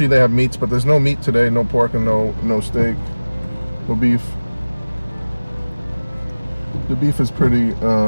they have meats, but there's no meat today. No pork and no steak, no beef. The beef is pretty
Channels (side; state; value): both; inverted; correlation -1.00